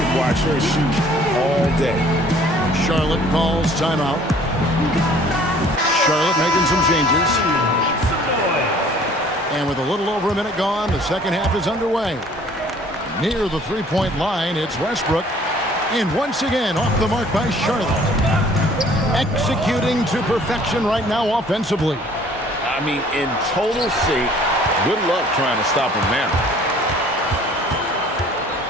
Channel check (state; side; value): normal; both; correlation 0.55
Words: watch her shoot all day. Charlotte calls timeout. Charlotte making some changes. And with a little over a minute gone, the second half is underway. Near the three-point line, it's Westbrook. And once again, off the mark by Charlotte. Executing to perfection right now offensively. I mean, in total sync. Good luck trying to stop him now.